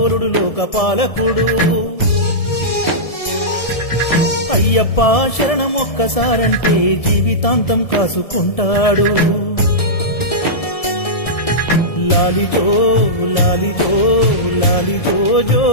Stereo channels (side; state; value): right; late; 1.7 ms